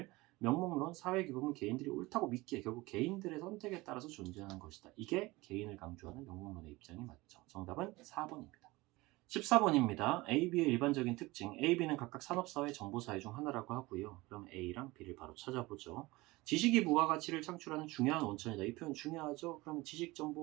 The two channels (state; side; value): quieter; left; 21.3 dB